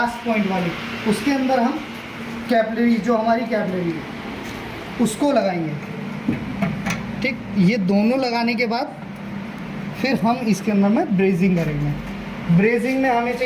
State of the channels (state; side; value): identical; both; correlation 1.00